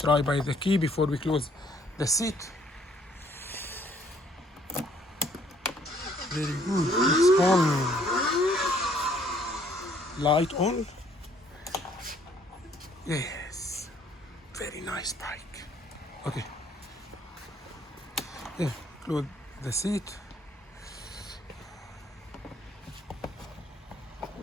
by the key before we close the seat. Very good. It's on. Light on. Yes. Very nice bike. Okay. Yeah, close the seat.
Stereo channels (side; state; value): both; normal; correlation 0.63